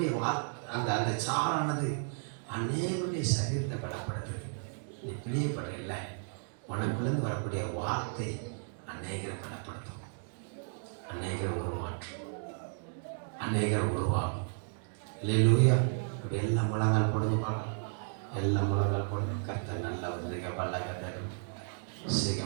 அந்த அந்த சாரானது அநேகருடைய சரீரத்தை பலப்படுத்துது. நீ பிழியப்படல, உனக்குள்ளேருந்து வரக்கூடிய வார்த்தை அநேகரை பலப்படுத்தும், அநேகரை உருமாற்றும், அநேகரை உருவாகும். அல்லேலூயா. இப்படி எல்லா முழங்கால் போடுங்க பார்க்கலாம். எல்லா முழங்கால் போடுங்க. கர்த்தர் நல்லா வந்து பல்லாக தரும், சிக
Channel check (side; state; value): left; silent; 55 dB below the other